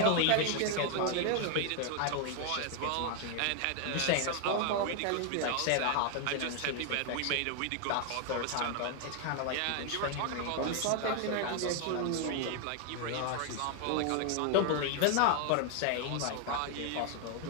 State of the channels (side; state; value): both; different; correlation 0.00